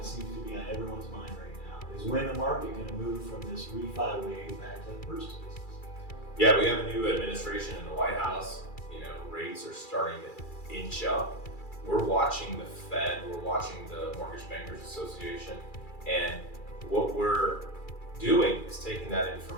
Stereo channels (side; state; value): right; late; 2.3 ms